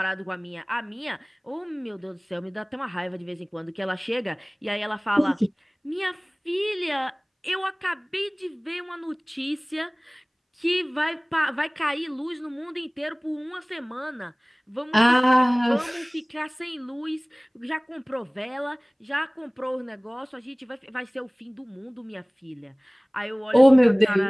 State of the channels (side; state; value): both; identical; correlation 1.00